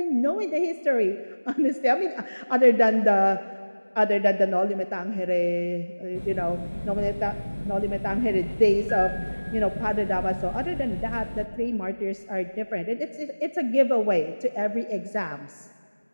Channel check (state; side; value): inverted; both; correlation -1.00